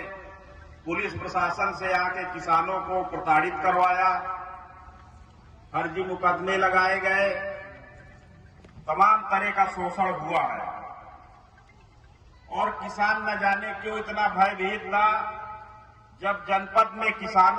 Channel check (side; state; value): both; identical; correlation 1.00